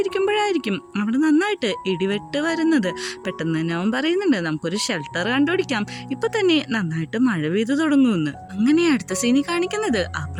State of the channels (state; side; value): identical; both; correlation 1.00